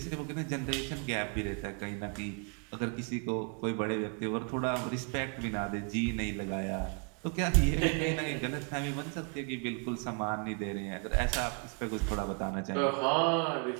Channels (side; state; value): left; quieter; 37.2 dB